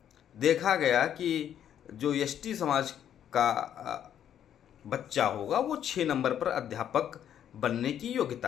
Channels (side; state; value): right; quieter; 9.9 dB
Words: देखा गया कि जो एसटी समाज का बच्चा होगा वो 6 नंबर पर अध्यापक बनने की योग्यता